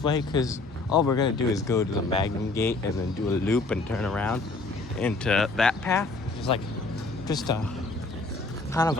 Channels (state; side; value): quieter; right; 3.4 dB